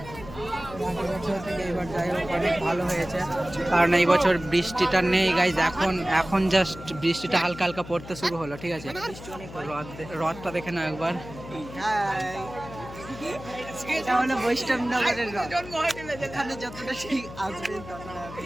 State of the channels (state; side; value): noise; left; hum, 14 dB below the sound